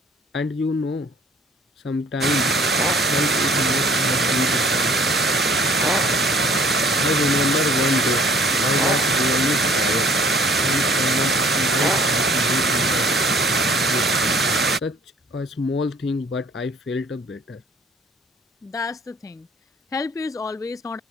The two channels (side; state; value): both; normal; correlation 0.55